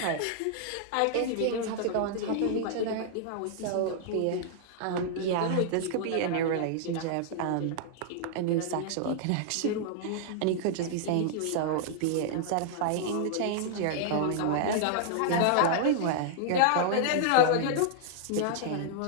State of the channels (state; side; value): different; both; correlation -0.01